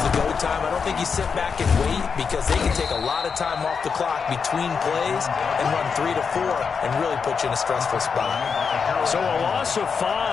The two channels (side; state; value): right; quieter; 5.8 dB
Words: go time. I don't think you sit back and wait because they can take a lot of time off the clock between plays and run 3 to 4 and really put you in a stressful spot. So a loss of